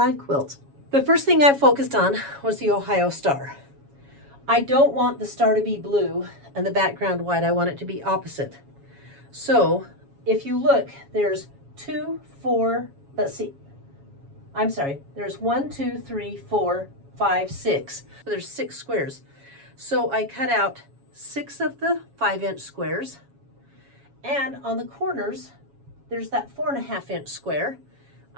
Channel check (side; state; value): left; late; 7.2 ms